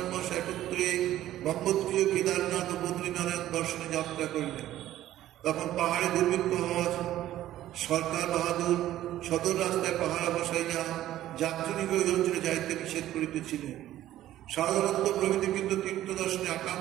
মাস একত্রে গঙ্গোত্রীয় কেদারনাথ ও বদ্রীনারায়ণ দর্শনে যাত্রা করিলেন। তখন পাহাড়ে দুর্ভিক্ষ হওয়া সরকার বাহাদুর সদর রাস্তায় পাহারা বসাইয়া যাত্রীকে ওই অঞ্চলে যাইতে নিষেধ করিতেছিলেন। সারদানন্দ প্রভৃতি কিন্তু তীর্থ দর্শনে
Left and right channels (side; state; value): left; quieter; 13.5 dB